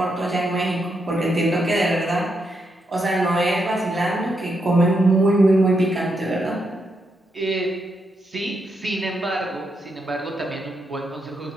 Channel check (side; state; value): both; normal; correlation 0.81